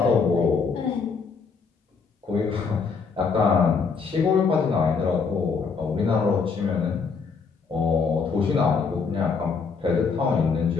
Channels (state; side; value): quieter; right; 5.2 dB